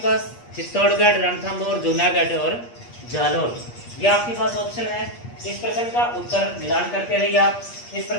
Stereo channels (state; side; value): late; right; 8.4 ms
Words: चित्तौड़गढ़, रणथंभौर, जूनागढ़ और जालौर, ये आपके पास ऑप्शन है। इस प्रश्न का उत्तर मिलान करते रहिए आप। इस